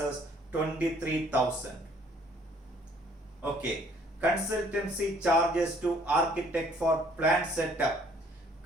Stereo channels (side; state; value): both; normal; correlation 0.60